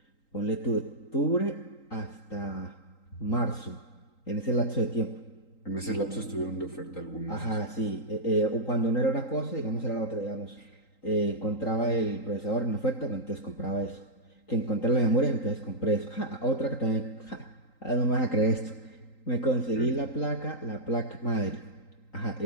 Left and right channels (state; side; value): late; right; 3.9 ms